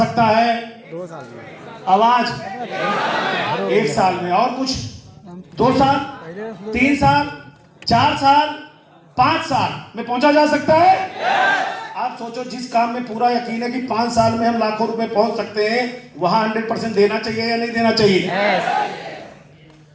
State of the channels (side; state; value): both; identical; correlation 1.00